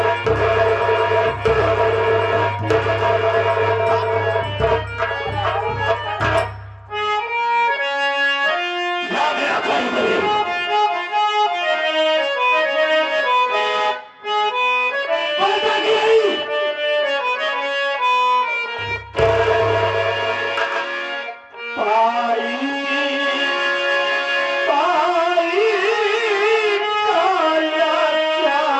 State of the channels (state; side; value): identical; both; correlation 1.00